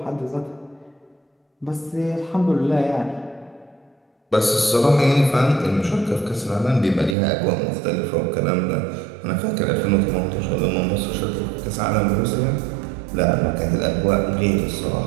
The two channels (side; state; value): left; drops out; at 7.2 s